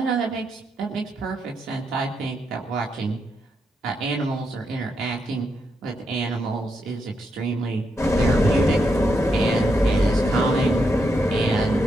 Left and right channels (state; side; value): normal; both; correlation 0.82